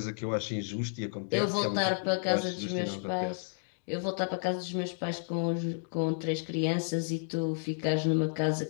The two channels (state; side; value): silent; right; digital silence